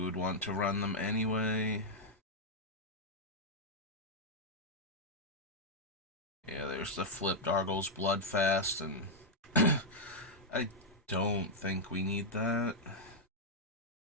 would want to run them anyway. Yeah, there's the flipped Argos Bloodfast, and I don't think we need that.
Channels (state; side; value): normal; both; correlation -0.04